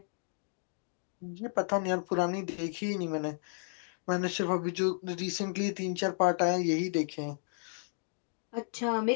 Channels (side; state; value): right; silent; digital silence